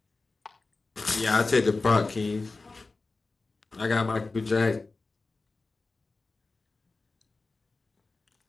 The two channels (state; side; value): quieter; right; 3.6 dB